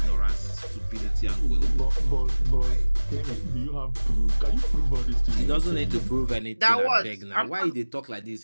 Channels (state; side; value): inverted; both; correlation -1.00